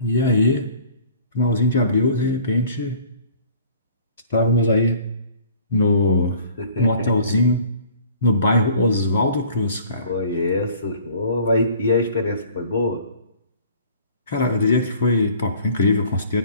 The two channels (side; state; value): both; inverted; correlation -0.51